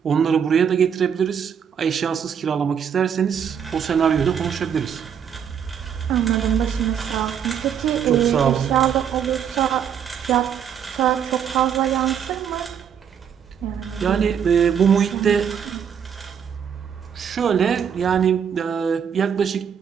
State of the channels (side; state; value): left; quieter; 8.0 dB